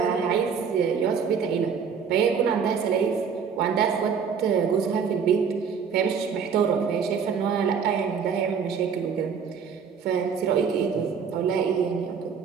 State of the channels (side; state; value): left; quieter; 6.5 dB